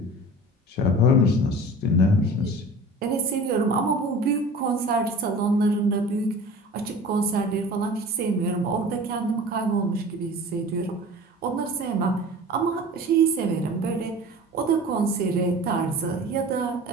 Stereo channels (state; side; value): normal; both; correlation 0.39